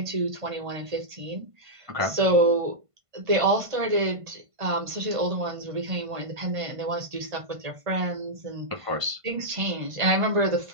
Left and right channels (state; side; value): late; left; 1.5 ms